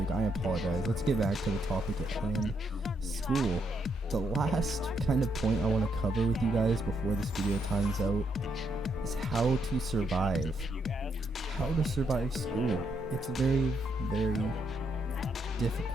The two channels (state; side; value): normal; both; correlation 0.77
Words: I apologize. Let's get back to the topic at hand, school. The last kind of point I want to cover with you guys before this video times out is how to survive. How to survive school. It's very, very